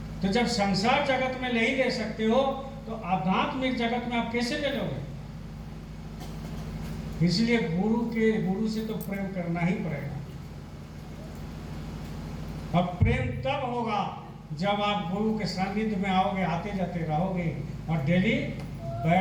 तो जब संसार जगत में नहीं ले सकते हो तो आध्यात्मिक जगत में आप कैसे ले लोगे? इसलिए गुरु से तो प्रेम करना ही पड़ेगा। अब प्रेम तब होगा जब आप गुरु के सानिध्य में आओगे, आते जाते रहोगे और डेली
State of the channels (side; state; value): both; identical; correlation 1.00